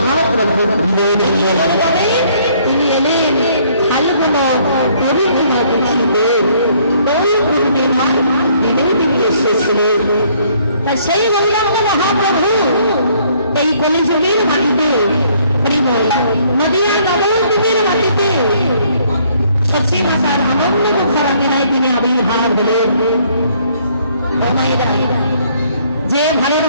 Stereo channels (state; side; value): inverted; both; correlation -0.64